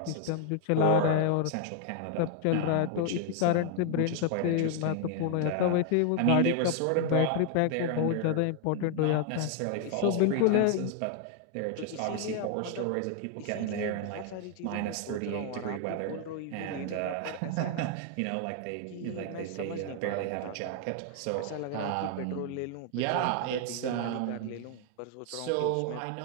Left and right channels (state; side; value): different; both; correlation 0.00